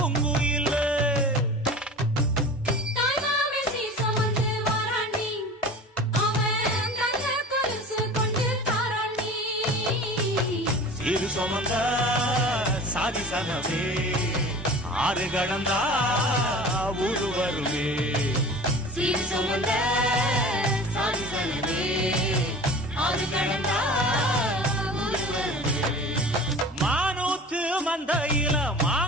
சீரு சுமந்த சாதி சனமே ஆறு கடந்தா ஊரு வருமே சீரு சுமந்த சாதி சனமே ஆறு கடந்தா ஊரு வருமே மானூத்து மந்தையில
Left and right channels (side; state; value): both; normal; correlation 0.38